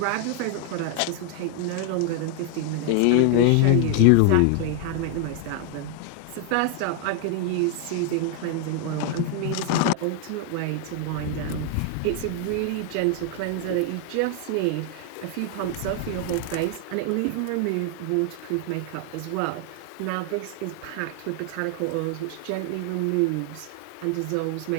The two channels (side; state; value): both; different; correlation 0.00